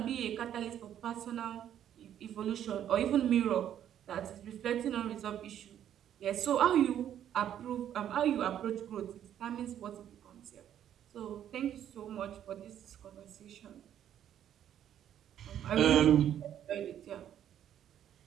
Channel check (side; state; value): left; quieter; 10.4 dB